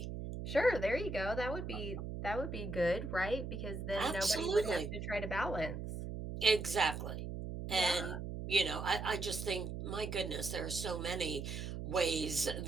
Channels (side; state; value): right; noise; hum, 6 dB below the sound